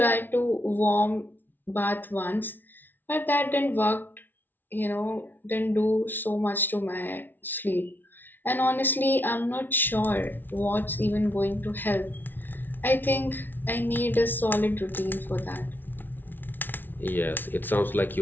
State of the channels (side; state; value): right; late; 0.092 ms